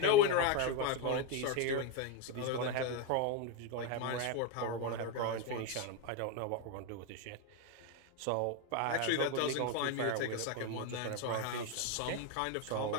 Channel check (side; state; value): both; different; correlation 0.02